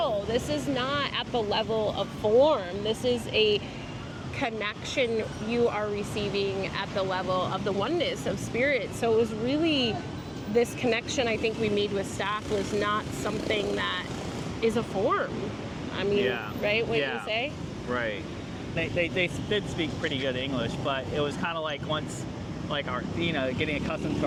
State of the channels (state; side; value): identical; both; correlation 1.00